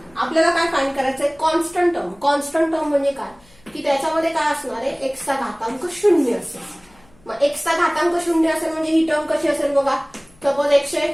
आपल्याला काय फाइंड करायचंय कॉन्स्टंट टर्म. कॉन्स्टंट टर्म म्हणजे काय की त्याच्यामध्ये काय असणार आहे x चा घातांक 0 असेल. मग x चा घातांक 0 असेल म्हणजे ही टर्म कशी असेल बघा. Suppose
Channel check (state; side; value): noise; left; hum, 29 dB below the sound